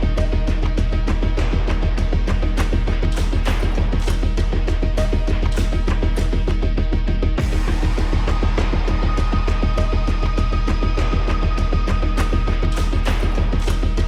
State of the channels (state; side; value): identical; both; correlation 1.00